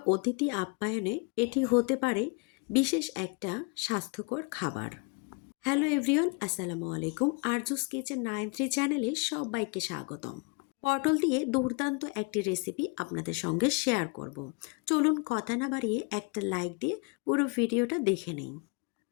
অতিথি আপ্যায়নে এটি হতে পারে বিশেষ একটা স্বাস্থ্যকর খাবার। হ্যালো এভরিওয়ান, আসসালামু আলাইকুম। আরজুস কিচেন 93 চ্যানেলে সবাইকে স্বাগতম। পটল দিয়ে দুর্দান্ত একটি রেসিপি আপনাদের সঙ্গে শেয়ার করব। চলুন কথা না বাড়িয়ে একটা লাইক দিয়ে পুরো ভিডিওটা দেখে নিন।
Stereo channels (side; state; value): right; quieter; 30.3 dB